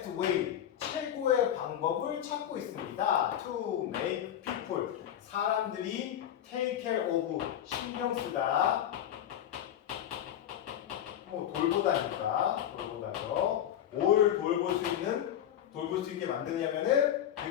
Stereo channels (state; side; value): quieter; right; 10.6 dB